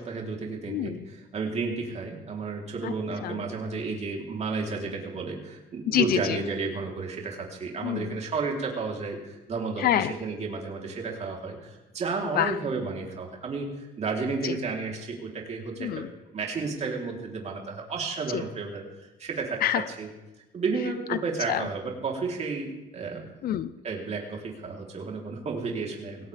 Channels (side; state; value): both; normal; correlation 0.35